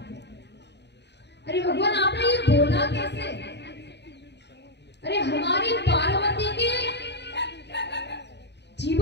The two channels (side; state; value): right; late; 0.50 ms